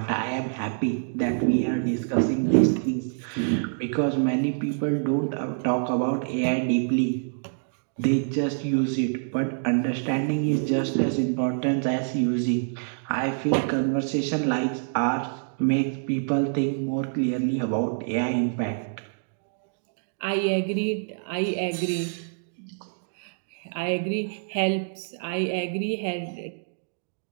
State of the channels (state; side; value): silent; left; digital silence